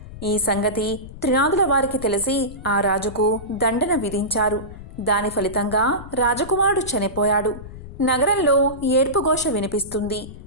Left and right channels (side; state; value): left; noise; rumble, 14 dB below the sound